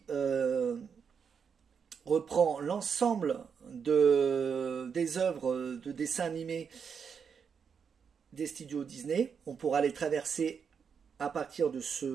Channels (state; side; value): quieter; left; 6.6 dB